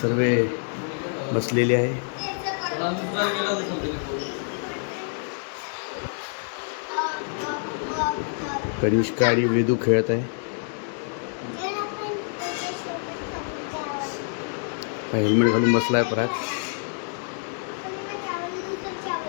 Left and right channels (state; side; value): silent; right; 58 dB below the other